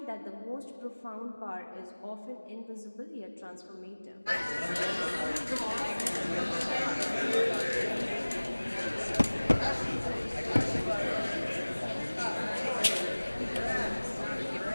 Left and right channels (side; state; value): both; inverted; correlation -1.00